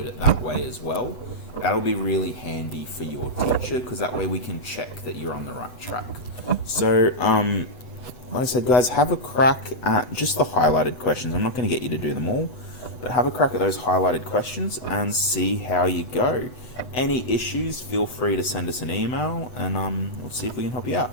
it that way as well. That'll be really handy for your teacher, because that way we can check that you're on the right track. So, like I said, guys, have a crack at just the highlighted questions. I'm not going to get you to do them all, but have a crack at those highlighted questions and see how you go. Any issues, feel free to send us an email, and we'll see if we can help you out.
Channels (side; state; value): right; late; 8.0 ms